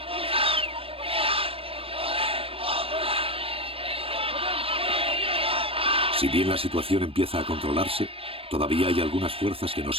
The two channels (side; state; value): left; late; 0.27 ms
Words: Si bien la situación empieza a controlarse, todavía hay algunas fuerzas que no